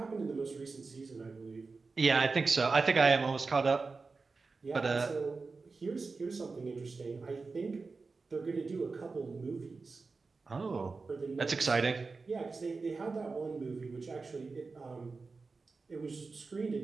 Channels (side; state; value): left; quieter; 4.2 dB